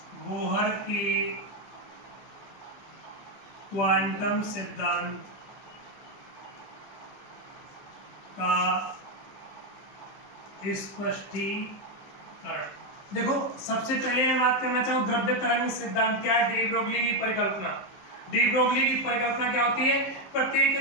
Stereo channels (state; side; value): late; right; 16 ms